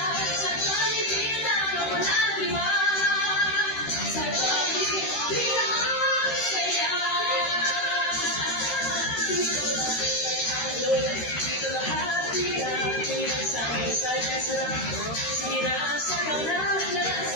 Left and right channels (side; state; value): right; late; 13 ms